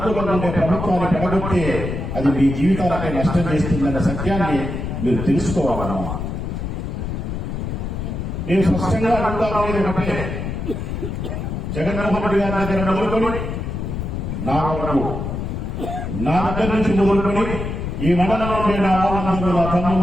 ఉండే ప్రభుత్వాన్ని పడగొట్టే అది మీ జీవితాలపై నష్టం చేస్తుందన్న సత్యాన్ని మీరు తెలుసుకోవాలమ్మా. నేను స్పష్టంగా అడుగుతా ఉండేది ఒకటే, జగన్మోహన్ రెడ్డి గారి దగ్గర మొదలుకొని నా వరకు, నా దగ్గర నుంచి మొదలుకొని ఈ మండలంలో ఉండే నా వాళ్ళందరూ, నా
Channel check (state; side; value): noise; left; rumble, 4 dB below the sound